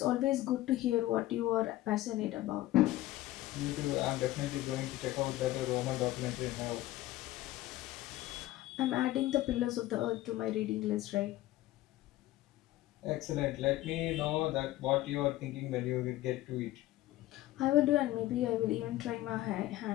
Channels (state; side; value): quieter; right; 16.0 dB